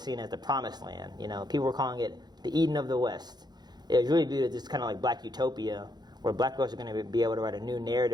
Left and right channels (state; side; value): late; left; 0.20 ms